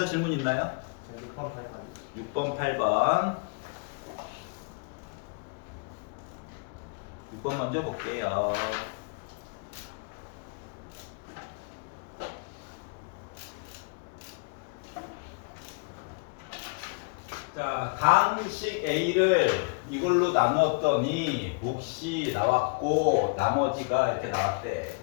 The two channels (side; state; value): right; quieter; 34.2 dB